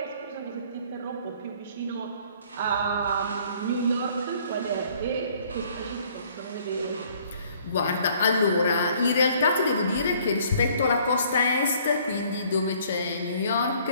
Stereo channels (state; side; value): inverted; both; correlation -0.59